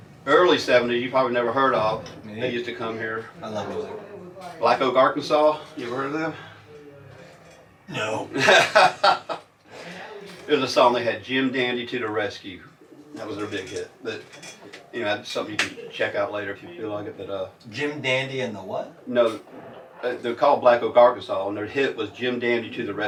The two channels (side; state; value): both; identical; correlation 1.00